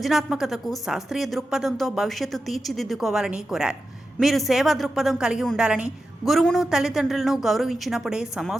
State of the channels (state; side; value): normal; both; correlation 0.91